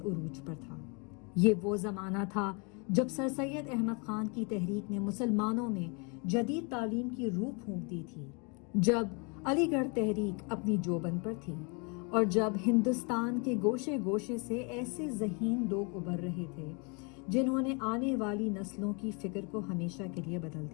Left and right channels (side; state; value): right; quieter; 33.2 dB